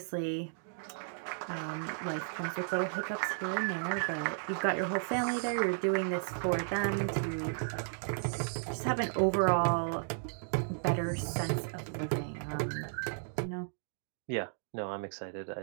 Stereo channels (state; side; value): silent; left; digital silence